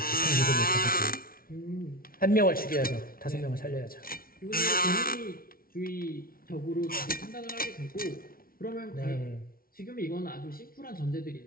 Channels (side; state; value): right; late; 0.43 ms